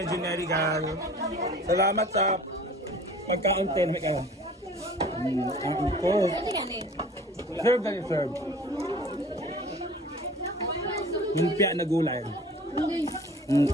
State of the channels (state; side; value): normal; both; correlation 0.46